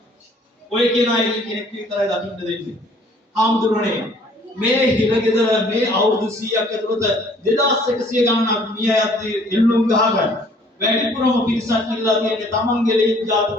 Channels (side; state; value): both; normal; correlation 0.57